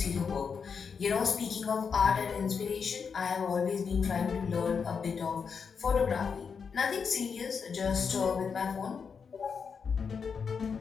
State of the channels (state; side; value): quieter; right; 6.0 dB